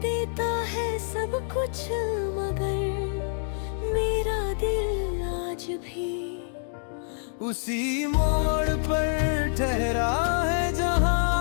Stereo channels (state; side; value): silent; right; digital silence